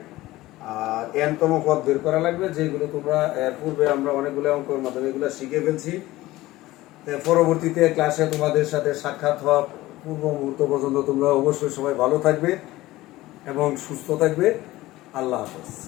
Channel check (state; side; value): quieter; right; 17.6 dB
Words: আর n তম পদ বের করা লাগবে, যেগুলো তোমরা এর পূর্বে আমরা অনেকগুলো অঙ্কের মাধ্যমে এগুলো শিখে ফেলছি। পরবর্তীতে ক্লাসে তোমাদের সাথে সাক্ষাৎ হওয়া পূর্ব মুহূর্ত পর্যন্ত তোমরা অবশ্যই সবাই ভালো থাকবে এবং সুস্থ থাকবে। আল্লাহ হাফেজ।